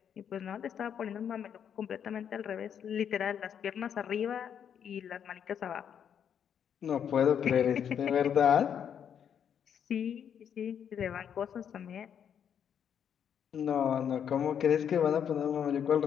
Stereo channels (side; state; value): right; quieter; 8.4 dB